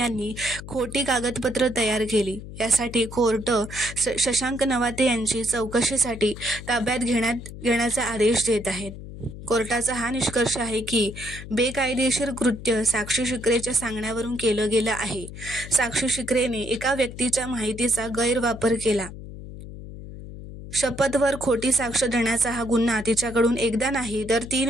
खोटी कागदपत्र तयार केली. यासाठी कोर्ट शशांक नवाते यांची चौकशीसाठी ताब्यात घेण्याचा आदेश देत आहेत. कोर्टाचा हा निष्कर्ष आहे की बेकायदेशीर कृत्य साक्षी शिकरेच्या सांगण्यावरून केलं गेलं आहे. साक्षी शिकरेने एका व्यक्तीच्या माहितीचा गैरवापर केला. शपथवर खोटी साक्ष देण्याचा हा गुन्हा तिच्याकडून एकदा नाही तर 3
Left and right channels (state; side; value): noise; left; hum, 12 dB below the sound